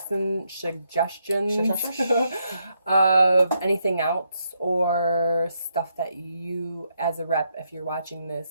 of anything else or stuff that you, as a rep, if you're watching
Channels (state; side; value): inverted; both; correlation -0.79